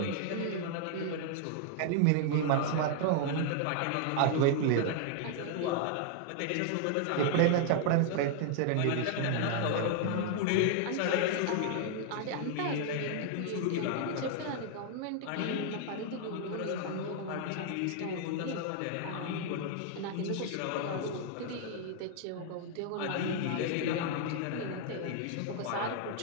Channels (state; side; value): different; both; correlation 0.00